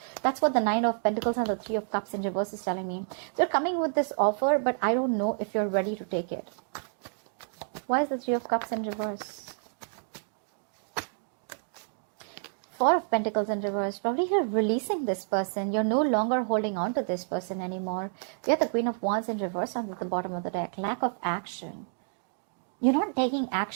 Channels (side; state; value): left; silent; digital silence